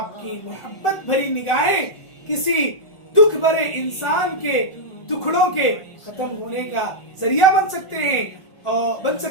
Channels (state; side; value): late; right; 1.4 ms